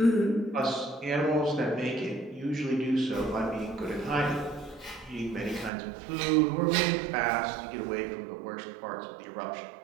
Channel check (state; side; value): drops out; left; at 5.7 s